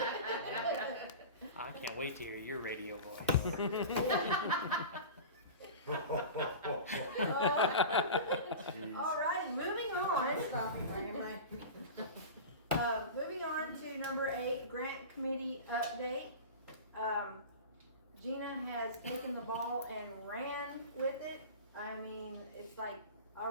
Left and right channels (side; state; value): both; inverted; correlation -0.31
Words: I can't wait to hear your radio voice. Jeez. Alright, moving on. Stop it, Ryan, Moving on to number 8, grant committee update. Gina has taken the ball and ran with it. I mean, it's like